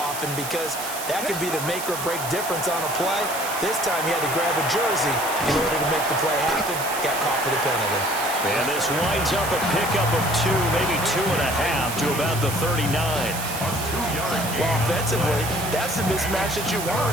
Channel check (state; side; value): noise; right; hiss, 7 dB below the sound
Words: because that could be the make or break difference on a play. This time he had to grab a jersey in order to make the play happen. Got caught for the penalty. And this winds up a pickup of 2, maybe 2.5 to about the 39. Well, offensively, that's the mismatch that you